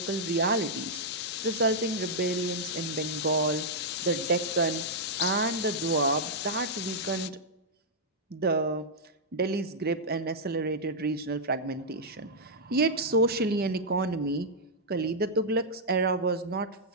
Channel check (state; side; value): normal; both; correlation -0.07